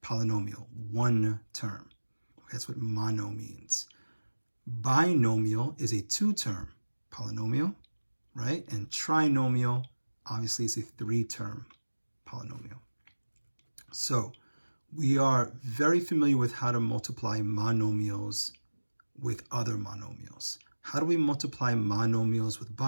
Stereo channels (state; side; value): inverted; both; correlation -1.00